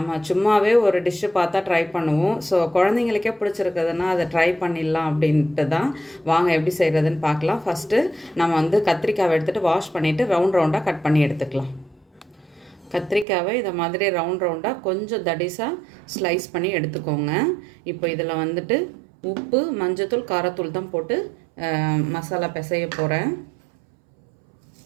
சும்மாவே ஒரு டிஷ்ஷு பார்த்தா ட்ரை பண்ணுவோம். ஸோ குழந்தைங்களுக்கே பிடிச்சிருக்குதுன்னா அதை ட்ரை பண்ணிடலாம் அப்படின்ட்டு தான். வாங்க எப்படி செய்கிறதுன்னு பார்க்கலாம். ஃபஸ்ட்டு நம்ம வந்து கத்திரிக்காவை எடுத்துகிட்டு வாஷ் பண்ணிவிட்டு ரவுண்டாக கட் பண்ணி எடுத்துக்கலாம். கத்திரிக்காவை இதை மாதிரி ரவுண்டாக கொஞ்சம் தடிசாக ஸ்லைஸ் பண்ணி எடுத்துக்கோங்க. இப்போ இதில் வந்துட்டு உப்பு, மஞ்சத்தூள், காரத்தூள் தான் போட்டு மசாலா பிசைய போகிறேன்.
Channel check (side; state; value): left; drops out; at 13.2 s